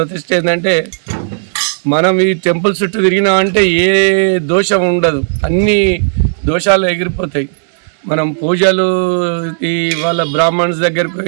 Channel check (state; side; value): silent; left; digital silence